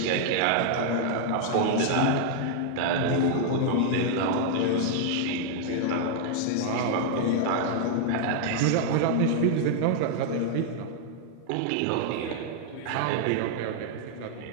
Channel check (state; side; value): different; both; correlation -0.01